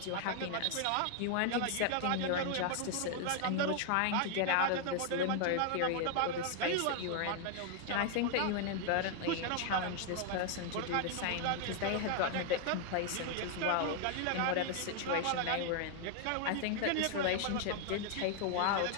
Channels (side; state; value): both; different; correlation 0.00